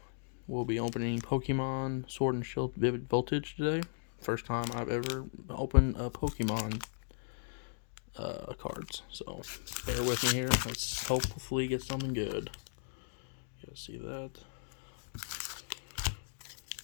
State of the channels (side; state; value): right; silent; digital silence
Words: We'll be opening Pokemon Sword and Shield Vivid Voltage today. First time I've ever opened a Pokemon cards, so bear with me here. Let's hopefully get something good. You guys see that?